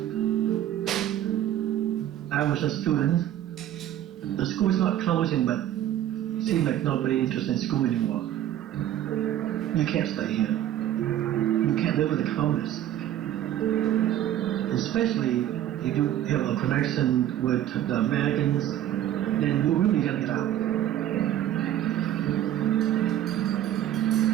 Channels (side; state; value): left; quieter; 11.9 dB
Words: I was a student. The school's not closing, but it seems like nobody interested in school anymore. You can't stay here. You can't live with the communists. Especially if you have a connection with the Americans, then you really gotta get out.